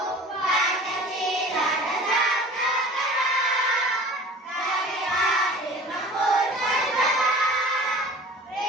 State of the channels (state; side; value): normal; both; correlation 0.42